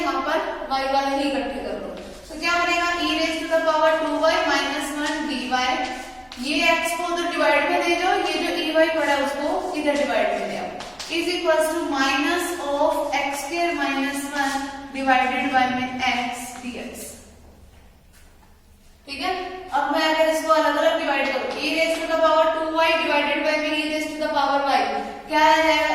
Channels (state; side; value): identical; both; correlation 1.00